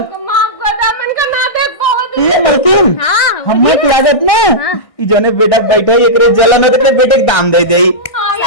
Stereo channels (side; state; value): right; late; 1.6 ms